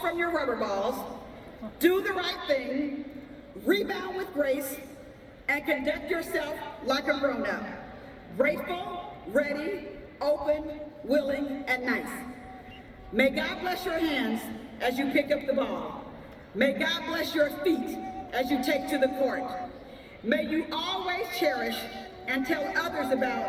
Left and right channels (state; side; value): identical; both; correlation 1.00